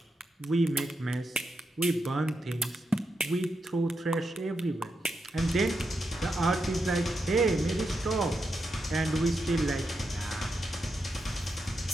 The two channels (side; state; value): both; normal; correlation 0.85